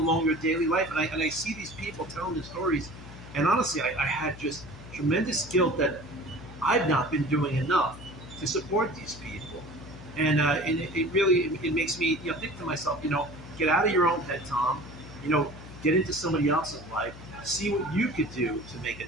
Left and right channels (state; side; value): noise; left; hum, 16 dB below the sound